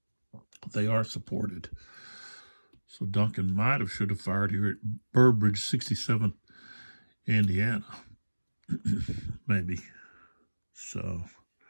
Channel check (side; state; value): both; inverted; correlation -1.00